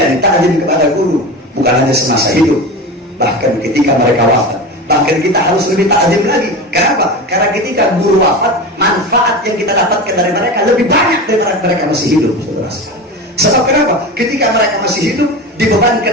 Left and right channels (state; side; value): normal; both; correlation 0.27